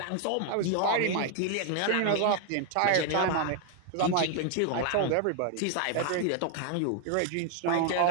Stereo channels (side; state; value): both; different; correlation 0.00